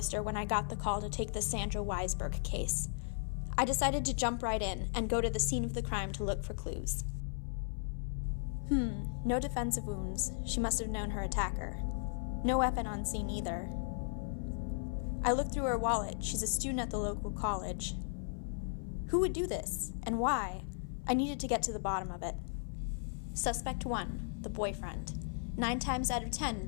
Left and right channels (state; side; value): silent; right; 54 dB below the other